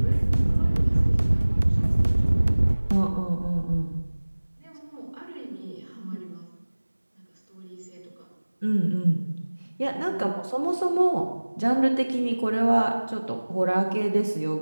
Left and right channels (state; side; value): inverted; both; correlation -1.00